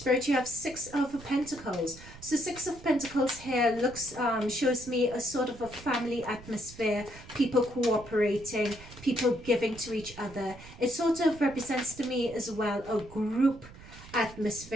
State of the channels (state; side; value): noise; right; rumble, 18 dB below the sound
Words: you have Six of Pentacles. So Six of Pentacles here looks, shows me a sort of a family atmosphere, people cooperating, people giving to each other. It sort of represents to me as well a group